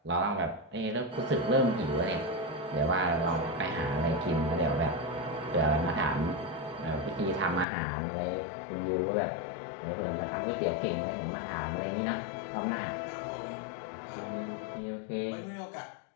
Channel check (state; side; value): drops out; right; at 7.7 s